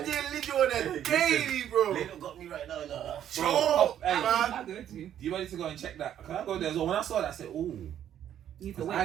there little on a daily, bro. Little got me right now. No. Bro, Hey, man. I go to. you ready to go and check that? Can I go there as well? When I saw that, I said, ooh. You need to Because wait I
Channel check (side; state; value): left; quieter; 10.4 dB